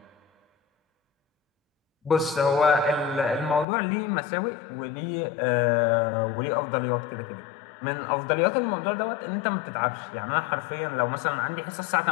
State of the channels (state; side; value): drops out; right; at 3.7 s